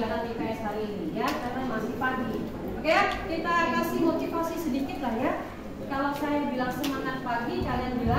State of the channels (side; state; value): both; identical; correlation 1.00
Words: IPS hari ini ya, karena masih pagi. Oke ya, kita kasih motivasi sedikit lah ya. Kalau saya bilang semangat pagi, kalian